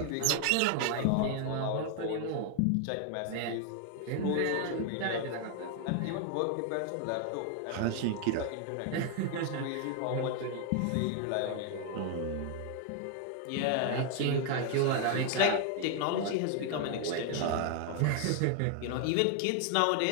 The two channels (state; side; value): different; both; correlation 0.00